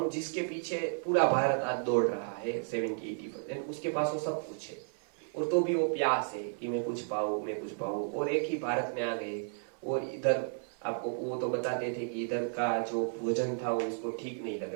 जिसके पीछे पूरा भारत आज दौड़ रहा है 70-80%, उसके पास वो सब कुछ है और तो भी वो प्यास है कि मैं कुछ पाऊं मैं कुछ पाऊं। और एक ही भारत में आ गए और इधर आपको वो तो बताते थे कि इधर का जो भोजन था वो उसको ठीक नहीं लग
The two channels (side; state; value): left; silent; 56 dB below the other